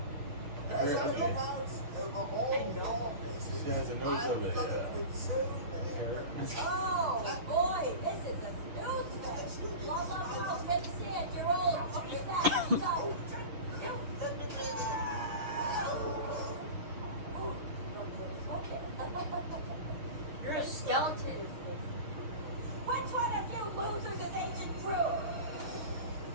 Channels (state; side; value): late; left; 6.6 ms